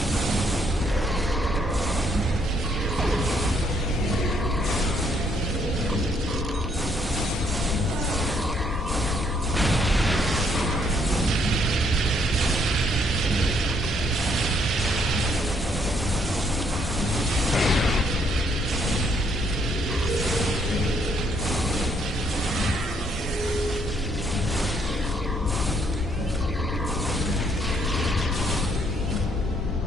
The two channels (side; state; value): both; normal; correlation 0.70